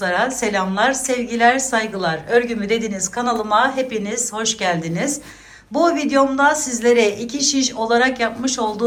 selamlar, sevgiler, saygılar. Örgümü Dediniz kanalıma hepiniz hoş geldiniz. Bu videomda sizlere iki şiş olarak yapmış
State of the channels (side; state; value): both; identical; correlation 1.00